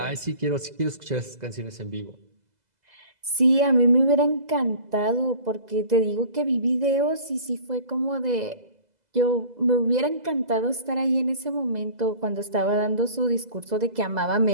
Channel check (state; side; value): late; left; 2.0 ms